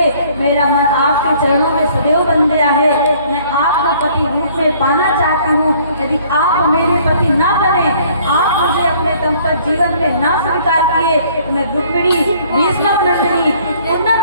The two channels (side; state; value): both; inverted; correlation -0.58